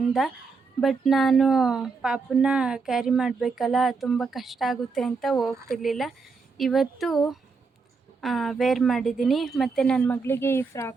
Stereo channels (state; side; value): quieter; left; 4.7 dB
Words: ಬಟ್ ನಾನು ಪಾಪನ್ನ ಕ್ಯಾರಿ ಮಾಡಬೇಕಲ್ಲ, ತುಂಬ ಕಷ್ಟ ಆಗುತ್ತೆ ಅಂತ ಹೋಗ್ತಿರ್ಲಿಲ್ಲ. ಇವತ್ತು ವೇರ್ ಮಾಡಿದ್ದೀನಿ. ಮತ್ತು ನನ್ನ ಮಗಳಿಗೆ ಈ